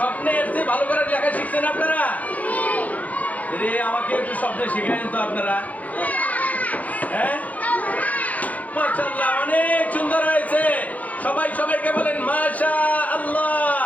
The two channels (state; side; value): late; right; 0.075 ms